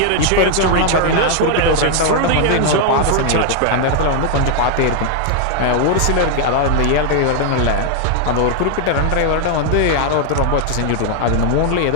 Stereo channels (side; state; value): both; different; correlation 0.00